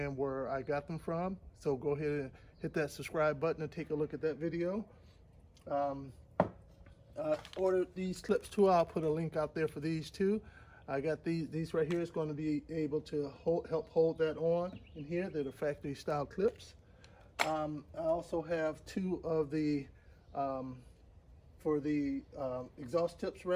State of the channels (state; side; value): identical; both; correlation 1.00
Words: where I got them from. So go ahead and hit that subscribe button and take a look at that video. Ordered these clips too. I'll put a link out there for these too. I got these right here. It's going to be able to help hold that on in here. They're the factory style clips. I also have two of the for the exhaust tips